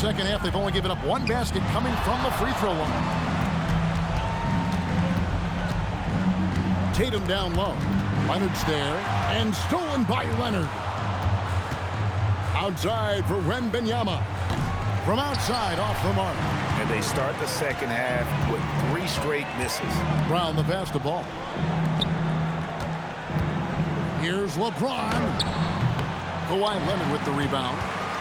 half, they've only given up 1 basket coming from the free throw line. Tatum down low. Leonard's there, and stolen by Leonard. Outside for Wembanyama. From outside, off the mark. And they start the second half with 3 straight misses. Brown the pass the ball. Here's LeBron. Kawhi Leonard with the rebound.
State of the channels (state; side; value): identical; both; correlation 1.00